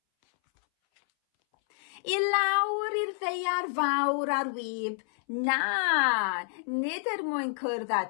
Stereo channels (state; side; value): silent; right; 59 dB below the other